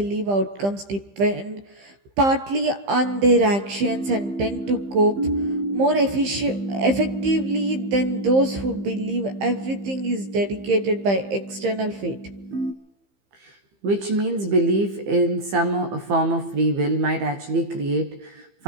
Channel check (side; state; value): left; late; 15 ms